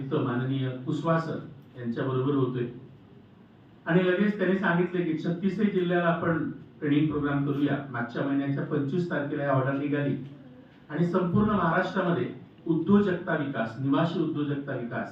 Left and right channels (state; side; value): identical; both; correlation 1.00